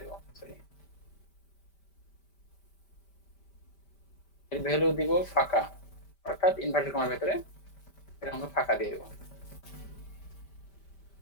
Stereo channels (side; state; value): right; late; 5.1 ms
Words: দেব, সরি এর ভ্যালু দিব ফাঁকা, অর্থাৎ ইনভার্টেড কমার ভেতরে এরকম ফাঁকা দিয়ে দেব।